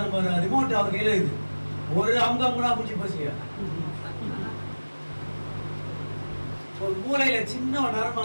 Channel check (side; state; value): both; inverted; correlation -1.00